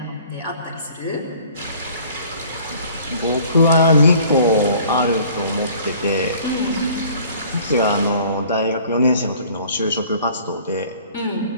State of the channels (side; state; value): both; inverted; correlation -0.52